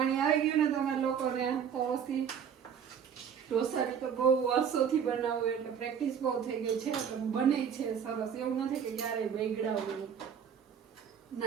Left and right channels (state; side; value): quieter; left; 7.8 dB